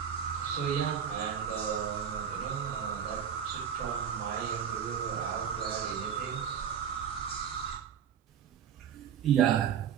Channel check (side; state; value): left; quieter; 8.1 dB